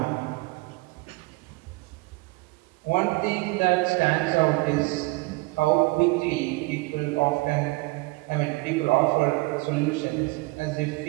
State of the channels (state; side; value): quieter; left; 24.3 dB